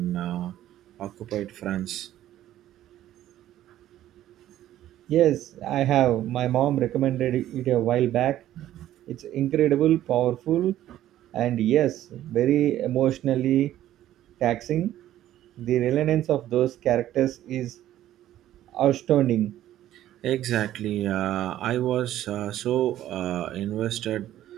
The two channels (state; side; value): quieter; left; 12.9 dB